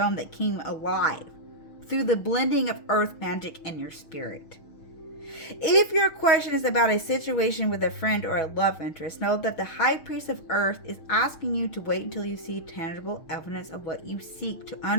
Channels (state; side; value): late; right; 6.4 ms